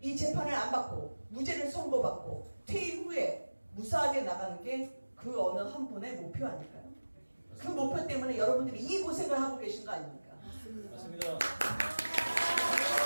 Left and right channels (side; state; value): both; inverted; correlation -1.00